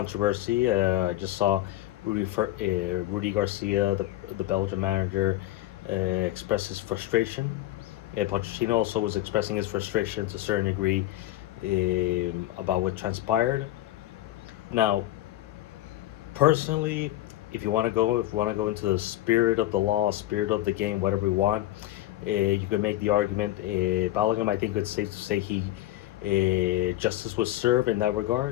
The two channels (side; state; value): right; quieter; 15.3 dB